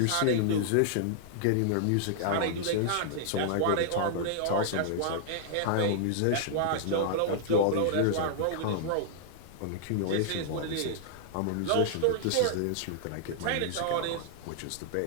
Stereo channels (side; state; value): both; different; correlation -0.01